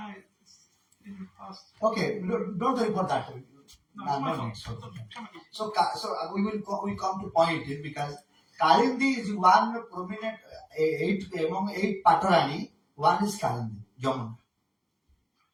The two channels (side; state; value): both; identical; correlation 1.00